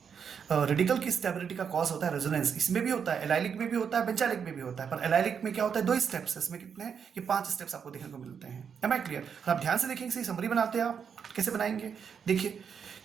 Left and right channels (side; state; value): left; quieter; 7.0 dB